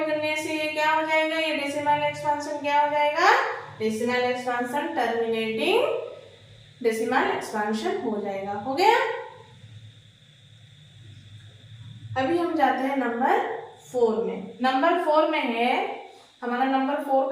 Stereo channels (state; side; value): identical; both; correlation 1.00